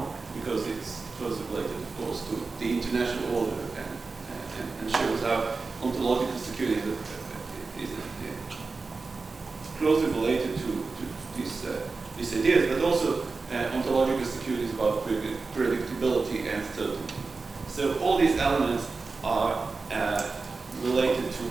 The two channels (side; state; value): left; quieter; 4.1 dB